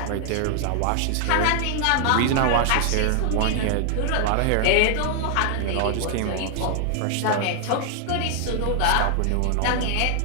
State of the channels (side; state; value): both; different; correlation 0.00